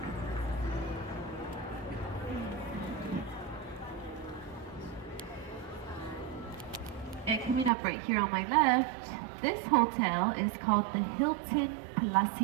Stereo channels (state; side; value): drops out; left; at 7.7 s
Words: And coming up right here on my left, this hotel is called the Hilton